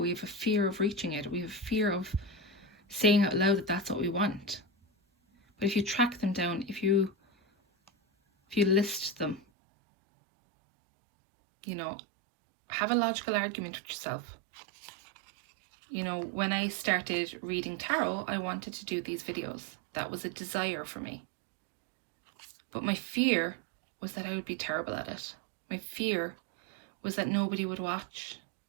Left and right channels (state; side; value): drops out; left; at 9.4 s